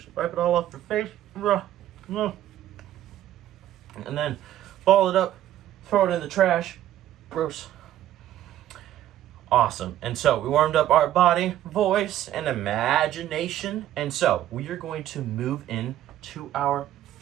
Wipe it all off your face. And then ball it up, throw it in the trash. Gross. Awesome. And so we warmed up our body, voice, and imagination. And so we are going to move into our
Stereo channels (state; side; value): quieter; left; 12.6 dB